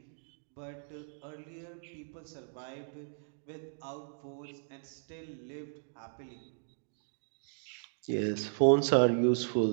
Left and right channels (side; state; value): left; silent; digital silence